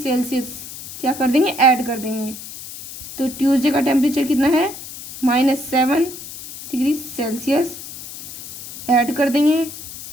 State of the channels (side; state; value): left; noise; hiss, 12 dB below the sound